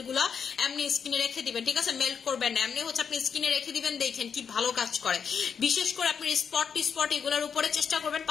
গুলা এমনি স্কিনে রেখে দিবেন, ঠিক আছে? মেল্ট করবেন না, এমনি হচ্ছে আপনি স্কিনে রেখে দিবেন, দেখেন কি ভালো কাজ করে। বিশেষ করে আপনি স্পট এগুলোর উপরে চেষ্টা করবেন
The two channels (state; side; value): quieter; right; 6.8 dB